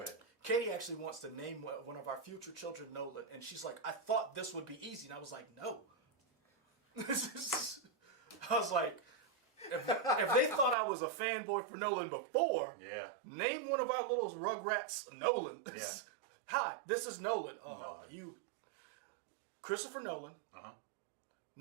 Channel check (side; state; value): left; drops out; at 10.8 s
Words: Go ahead. Katie actually wants to name one of our future children Nolan, and she's like, I thought this would be easy. And I was like, no. I was like, if they thought I was a fanboy for Nolan before, Yeah. name one of our little Rugrats Nolan. Yeah. Hi, this is Nolan. You. Christopher Nolan. Uh-huh.